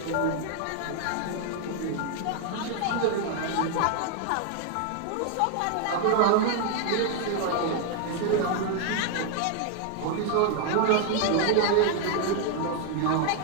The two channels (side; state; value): both; different; correlation 0.00